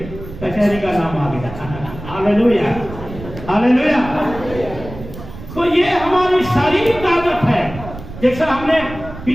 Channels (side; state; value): right; noise; rumble, 13 dB below the sound